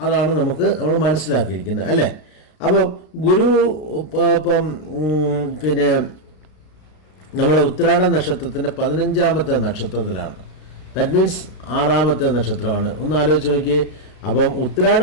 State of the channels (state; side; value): late; right; 33 ms